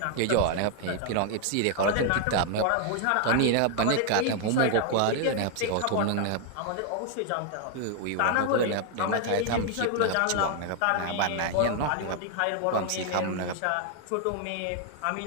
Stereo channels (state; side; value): different; both; correlation 0.00